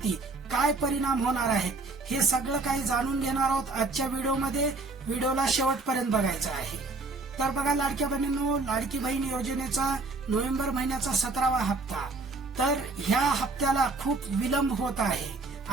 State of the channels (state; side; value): quieter; left; 3.5 dB